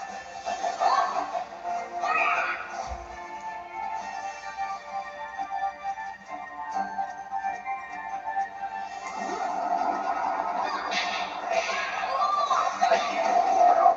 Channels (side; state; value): both; identical; correlation 1.00